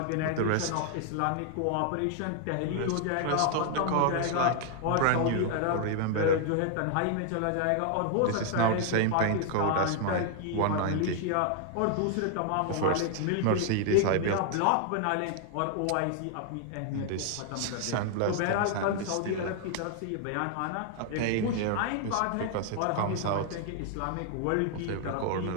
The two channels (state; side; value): different; both; correlation 0.00